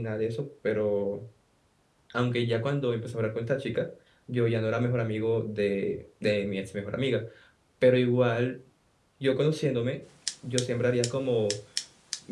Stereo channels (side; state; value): both; identical; correlation 1.00